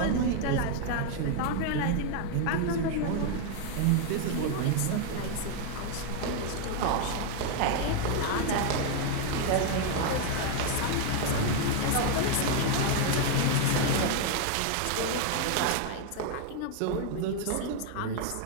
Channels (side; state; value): both; different; correlation 0.01